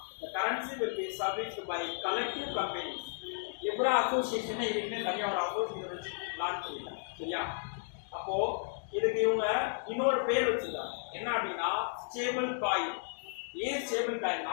the currency will be serviced by collective companies. Libre association இதுக்குமே தனியாக ஒரு அசோசியேஷன் வச்சு லான்ச் பண்ணிட்டாங்க. சரியா? அப்போ இதுக்கு இவங்க இன்னொரு பேர் வச்சிருக்காங்க, என்ன அப்படின்னா ஸ்டேபிள் காயின். ஏன் ஸ்டேபிள்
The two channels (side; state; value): right; silent; digital silence